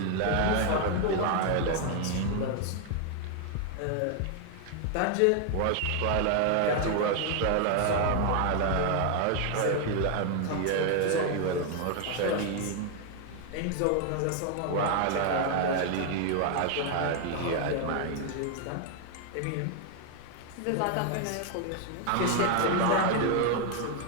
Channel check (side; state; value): both; different; correlation 0.00